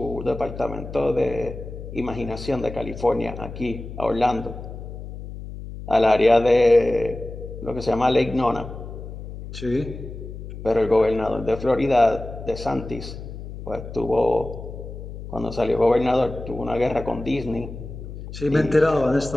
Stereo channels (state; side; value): noise; left; hum, 11 dB below the sound